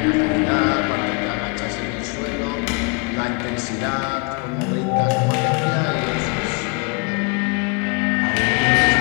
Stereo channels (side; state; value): right; quieter; 33.0 dB